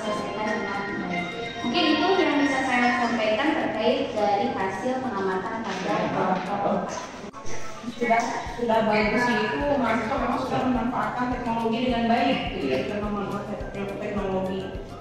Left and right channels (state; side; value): identical; both; correlation 1.00